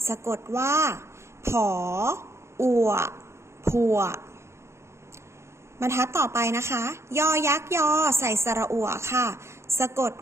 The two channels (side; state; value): left; late; 0.13 ms